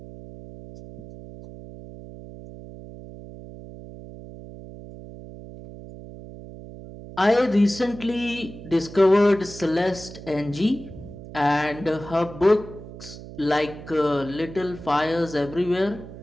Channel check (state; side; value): noise; right; hum, 14 dB below the sound